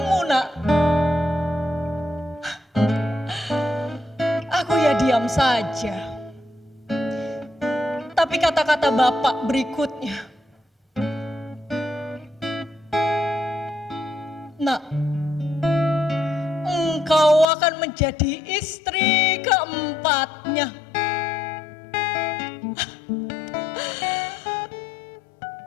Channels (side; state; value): right; drops out; at 17.4 s